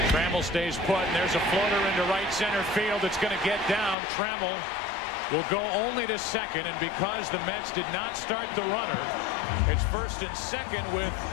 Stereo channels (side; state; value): right; drops out; at 4.0 s